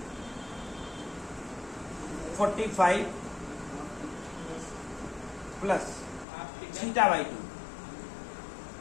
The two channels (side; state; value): right; drops out; at 6.2 s